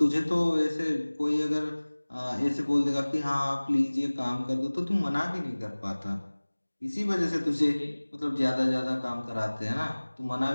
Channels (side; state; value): both; inverted; correlation -1.00